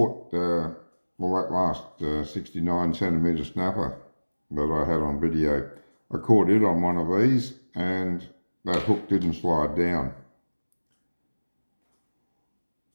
that last 69 centimetre snapper that I had on video. I caught it on one of these and that hook didn't slide down.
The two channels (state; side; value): inverted; both; correlation -1.00